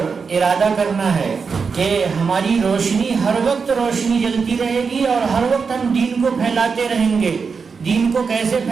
ارادہ کرنا ہے کہ ہماری روشنی ہر وقت روشنی جلتی رہے گی، اور ہر وقت ہم دین کو پھیلاتے رہیں گے۔ دین کو کیسے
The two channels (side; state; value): left; quieter; 5.3 dB